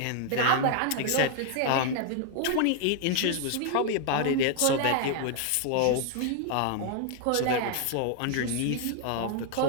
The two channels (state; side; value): different; both; correlation 0.00